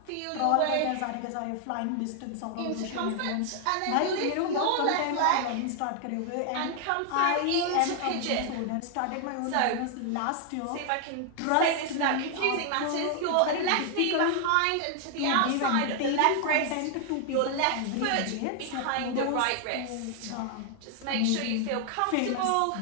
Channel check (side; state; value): both; different; correlation 0.00